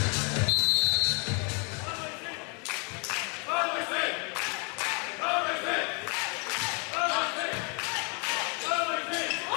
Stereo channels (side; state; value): right; quieter; 35.0 dB